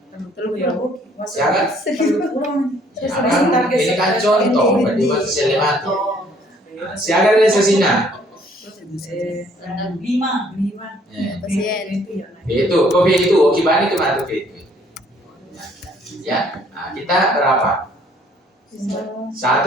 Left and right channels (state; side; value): normal; both; correlation 0.62